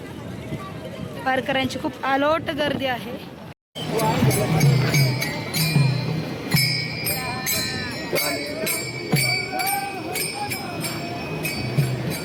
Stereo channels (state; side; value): identical; both; correlation 1.00